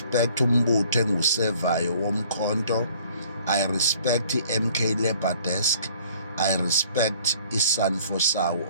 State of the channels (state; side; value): inverted; both; correlation -0.56